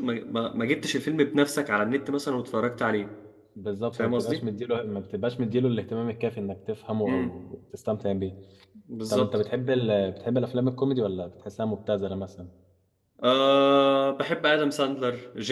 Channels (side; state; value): both; identical; correlation 1.00